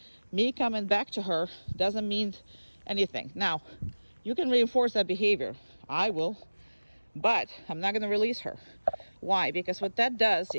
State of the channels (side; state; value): both; inverted; correlation -1.00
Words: Me coming back to her doesn't mean anything. Now, you can reinforce that behavior. I will, but I'm not gonna release her. Why? Because what that does